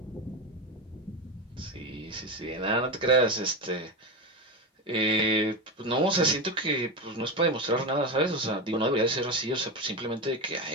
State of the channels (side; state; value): both; normal; correlation 0.17